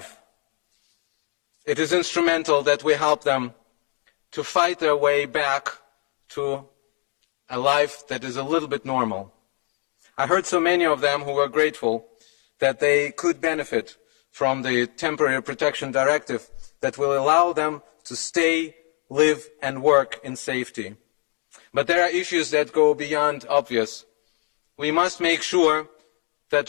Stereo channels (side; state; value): right; quieter; 39.1 dB